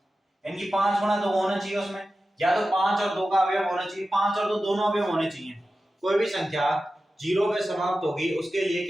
इनकी 5 गुणा 2 होना चाहिए उसमें, या तो 5 और 2 का अवयव होना चाहिए, 5 और 2 दोनों अवयव होने चाहिए। कोई भी संख्या 0 पे समाप्त होगी उसके लिए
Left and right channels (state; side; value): normal; both; correlation 0.93